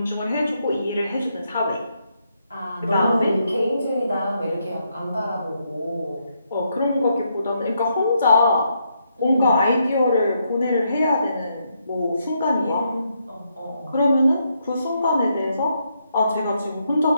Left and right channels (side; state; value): both; inverted; correlation -0.78